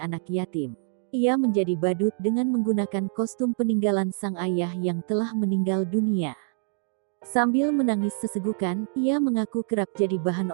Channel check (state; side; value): silent; left; 61 dB below the other